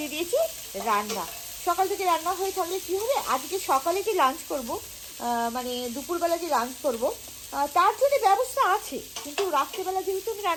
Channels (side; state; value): both; identical; correlation 1.00